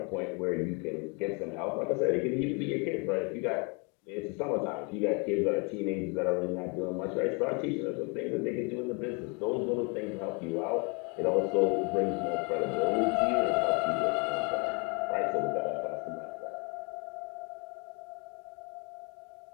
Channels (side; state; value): right; quieter; 33.2 dB